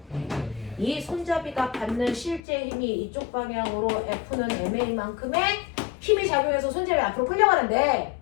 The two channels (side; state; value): right; drops out; at 2.4 s